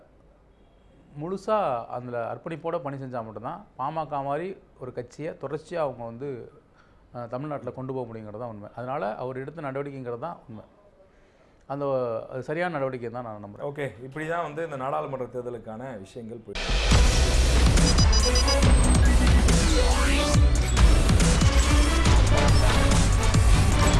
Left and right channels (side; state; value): both; identical; correlation 1.00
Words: முழுசாக அதில் அர்ப்பணிப்போடு பணி செஞ்சால் மட்டும்தான் பாமக மாதிரி ஒரு கட்சியை தொடர்ச்சியாக அவங்க வந்து தமிழ்நாட்டில் கொண்டு போக முடியுங்கிறது தான் உண்மை. அதனால் அவர் எடுத்த நடவடிக்கைங்கிறது தான் உண்மை. அந்த சரியான நடவடிக்கை தான் நான் நம்புகிறேன். ஓகே, இப்படி தான் வந்து இந்த நாடாளுமன்ற தேர்தலுக்கான விஷயங்கள் போயிட்டு